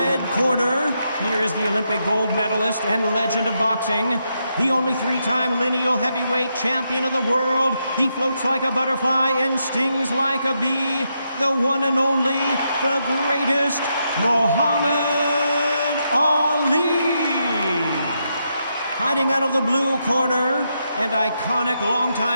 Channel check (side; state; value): both; inverted; correlation -0.82